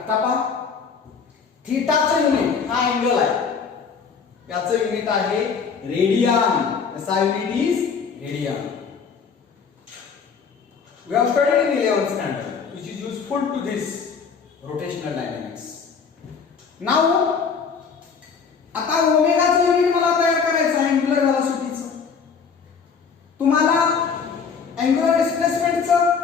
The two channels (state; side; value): quieter; right; 5.9 dB